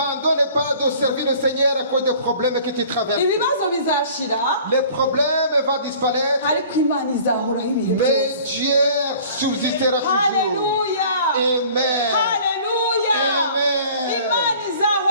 pas de servir le Seigneur à cause des problèmes que tu traverses. Les problèmes vont disparaître, mais Dieu subsistera toujours. Alléluia. Amen. Alléluia. Amen.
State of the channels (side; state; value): both; inverted; correlation -0.49